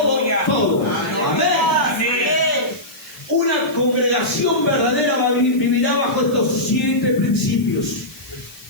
todo. Amén. Una congregación verdadera vivirá bajo estos 7 principios.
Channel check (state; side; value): noise; left; hiss, 21 dB below the sound